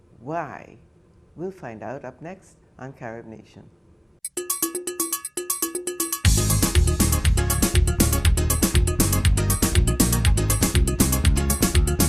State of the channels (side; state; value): both; identical; correlation 1.00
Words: why? We'll find out up next on Carib Nation.